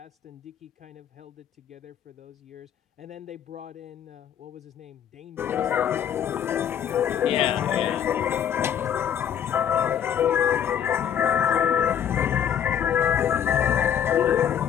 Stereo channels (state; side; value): quieter; right; 9.2 dB